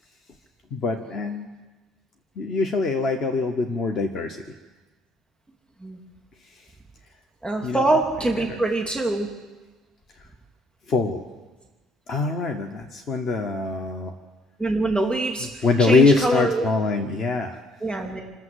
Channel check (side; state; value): both; normal; correlation 0.64